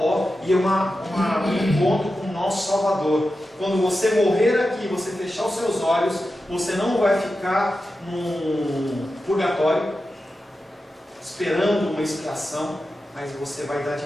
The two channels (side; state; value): both; normal; correlation 0.91